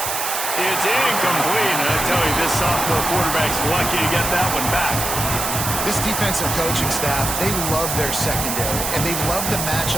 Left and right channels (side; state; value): right; noise; hiss, 2 dB below the sound